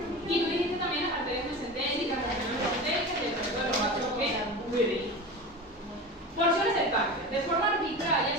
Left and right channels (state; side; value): normal; both; correlation 0.29